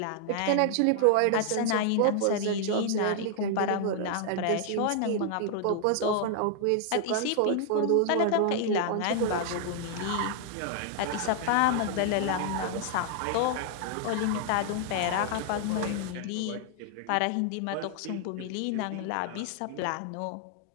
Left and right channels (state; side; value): different; both; correlation 0.00